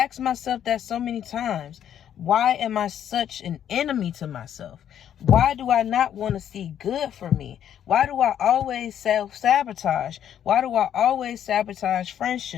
myself that so many times. Why am I such an enemy to myself? Why do I not want to see good for me? Why do I always self-sabotage? Why do I always sabotage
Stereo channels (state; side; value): quieter; right; 9.9 dB